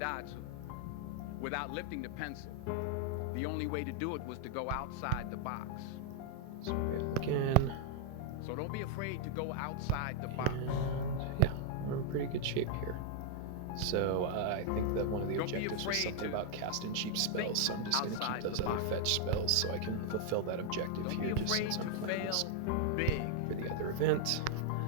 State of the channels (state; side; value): different; both; correlation 0.00